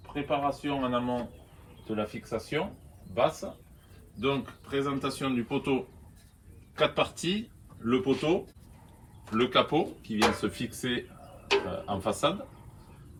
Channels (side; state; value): both; identical; correlation 1.00